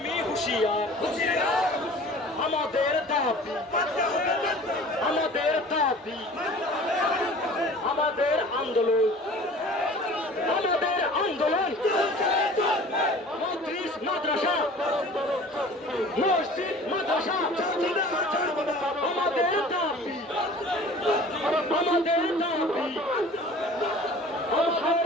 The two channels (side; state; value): both; normal; correlation 0.45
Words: হুঁশিয়ার। আমাদের দাবি, আমাদের দাবি, আমাদের আন্দোলন, আমাদের আন্দোলন। মসজিদ মাদ্রাসা, মসজিদ মাদ্রাসা, আমাদের দাবি, আমাদের দাবি।